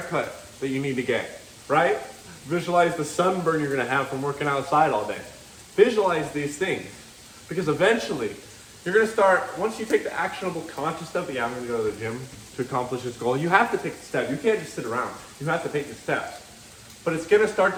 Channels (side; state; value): both; identical; correlation 1.00